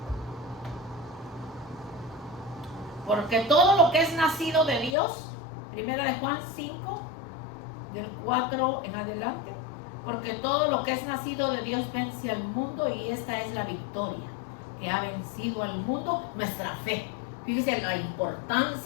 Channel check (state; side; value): drops out; right; at 5.0 s